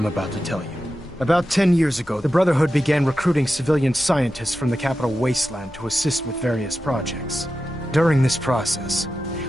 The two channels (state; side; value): normal; both; correlation 0.91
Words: about to tell you. About 10 years ago, the Brotherhood began recruiting civilian scientists from the capital wasteland to assist with various projects. During this process,